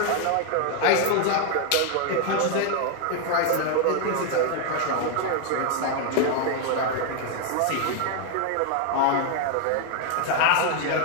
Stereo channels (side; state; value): both; different; correlation 0.00